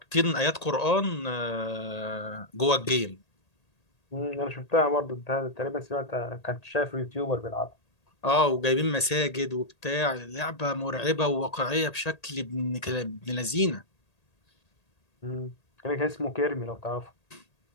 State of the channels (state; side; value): late; right; 1.8 ms